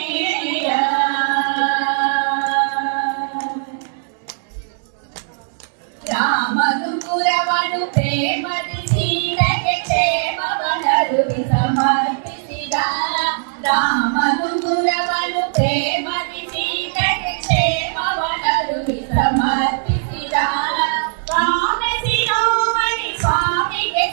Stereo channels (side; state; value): left; silent; 64 dB below the other